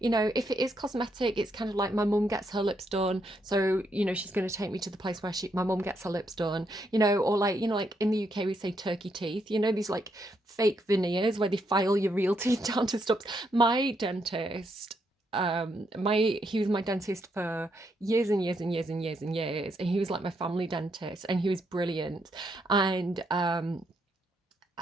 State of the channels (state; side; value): normal; both; correlation 0.77